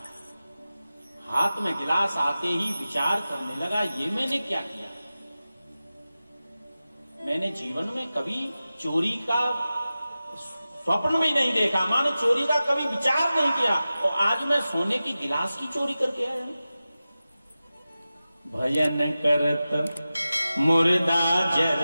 हाथ में गिलास आते ही विचार करने लगा, ये मैंने क्या किया। मैंने जीवन में कभी चोरी का स्वप्न में नहीं देखा, मानो चोरी का कभी विचार नहीं किया, और आज मैं सोने की गिलास की चोरी करके आया हूं। भजन करत मुर्दा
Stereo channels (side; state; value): both; inverted; correlation -0.95